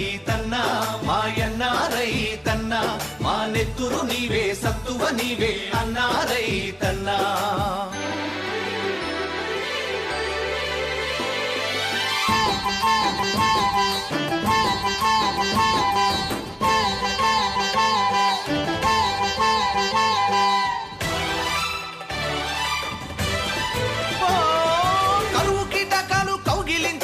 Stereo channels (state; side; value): identical; both; correlation 1.00